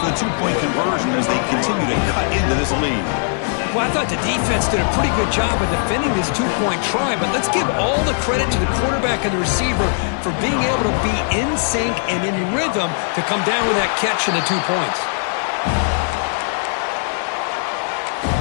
the 2-point conversion as they continue to cut into this lead. Well, I thought the defense did a pretty good job of defending this 2-point try, but let's give all the credit to the quarterback and the receiver for being able to be in sync and in rhythm to come down with that catch and the 2 points.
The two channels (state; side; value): silent; right; digital silence